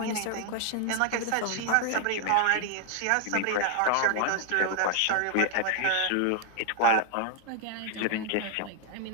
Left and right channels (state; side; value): different; both; correlation 0.00